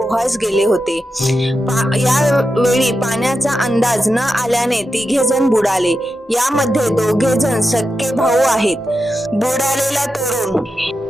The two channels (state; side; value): normal; both; correlation 0.89